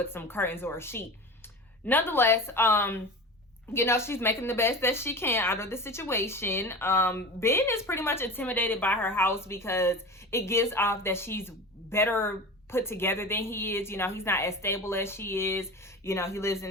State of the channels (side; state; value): both; normal; correlation 0.31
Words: some curtains or a sheet. Nonetheless, you know, she's making the best that she can out of the situation. Ben is pretty much intimidated by her house because it gives off that she's better put together than he is. You know, he's not as stable as she is. You know, he lives in